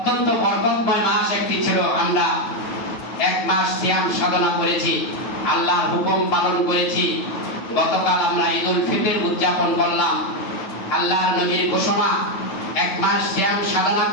বরকতময় মাস একটি ছিল। আমরা এক মাস সিয়াম সাধনা করেছি, আল্লাহর হুকুম পালন করেছি। গতকাল আমরা ঈদুল ফিতর উদযাপন করলাম। আল্লাহর নবীর ঘোষণা, এক মাস সিয়াম সাধনা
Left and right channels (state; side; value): late; right; 9.4 ms